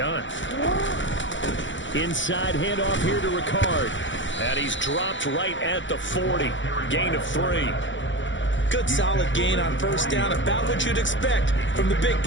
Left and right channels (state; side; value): late; right; 0.55 ms